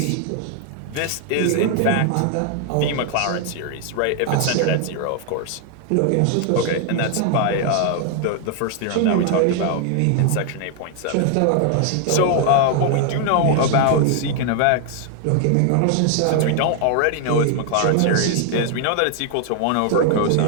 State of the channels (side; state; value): both; different; correlation 0.00